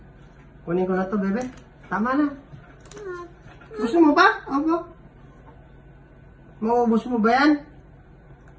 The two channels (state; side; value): identical; both; correlation 1.00